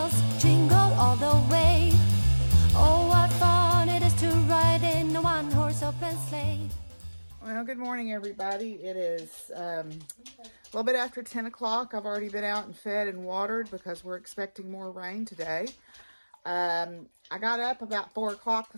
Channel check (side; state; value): both; inverted; correlation -1.00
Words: jingle all the way. Oh, what fun it is to ride in a one-horse open sleigh. Well, good morning, everybody. It is a little bit after 10 o'clock. I've already been out and fed and watered because we're expecting more rain today. I got up about 4 o'clock